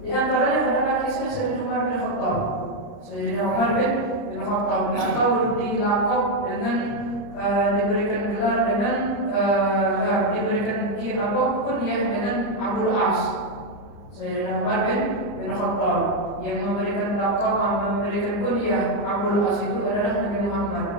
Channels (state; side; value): late; right; 30 ms